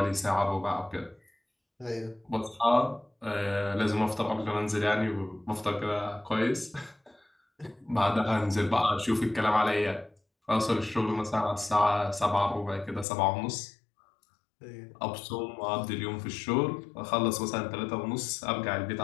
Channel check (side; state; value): right; drops out; at 13.1 s